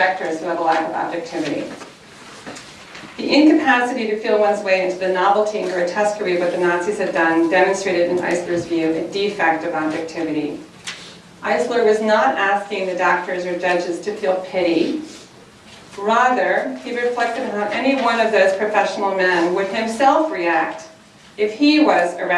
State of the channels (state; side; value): identical; both; correlation 1.00